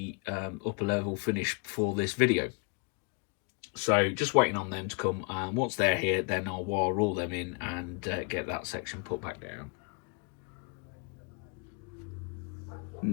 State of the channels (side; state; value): right; quieter; 35.1 dB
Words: upper level finished for this video. So just waiting on them to come. Once they're here, then I'll wire all them in and get that section put back down.